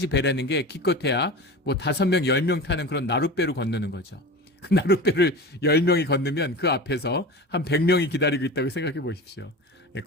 배라는 게 기껏해야 뭐 5명, 10명 타는 그런 나룻배로 건너는 거죠. 그 나룻배를 10명이 건너면 그 앞에서 한 100명이 기다리고 있다고 생각해 보십시오.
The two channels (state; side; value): normal; both; correlation 0.31